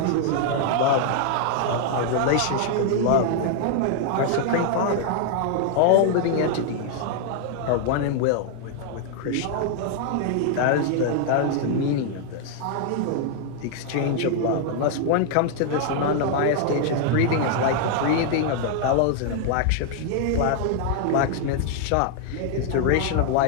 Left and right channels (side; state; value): both; different; correlation 0.00